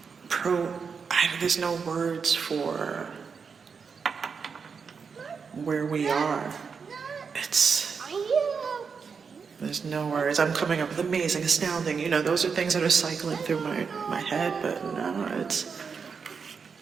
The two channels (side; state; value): left; quieter; 5.8 dB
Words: there's no words for where we are. There's no words. I'm coming up with amazing, astounding, you know, those are things that are cycling through my head, but no, it's